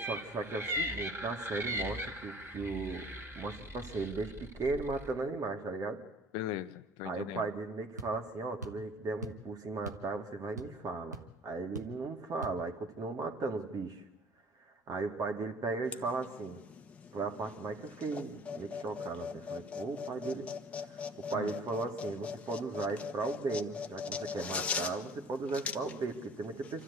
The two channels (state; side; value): normal; both; correlation 0.50